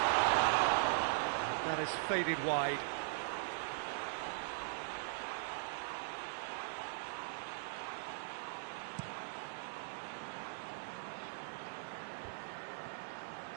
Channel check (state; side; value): silent; left; digital silence